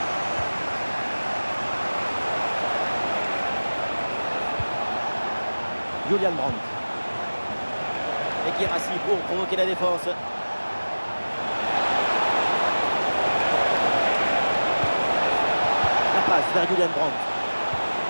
Julian Brandt. Et Guirassy pour provoquer la défense. La passe vers Julian Brandt.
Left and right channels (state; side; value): inverted; both; correlation -1.00